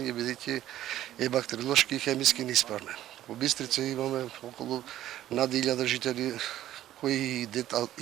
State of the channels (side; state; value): left; quieter; 13.1 dB